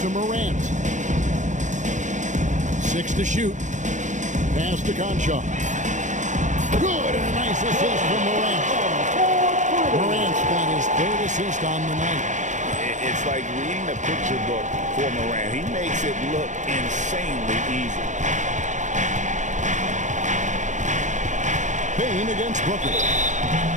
to Morant. 6 to shoot. Pass to Conchar. Good, and a nice assist from Morant. Morant's got his 3rd assist on the night. It's like reading a picture book for Morant. He makes it look insanely easy. Bain against Booker.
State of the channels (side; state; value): left; late; 0.35 ms